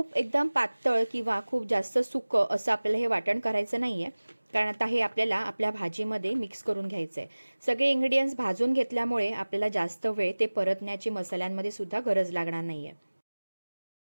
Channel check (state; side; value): inverted; both; correlation -1.00